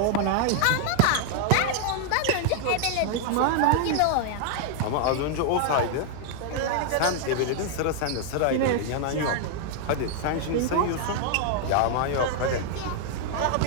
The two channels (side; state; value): both; different; correlation 0.00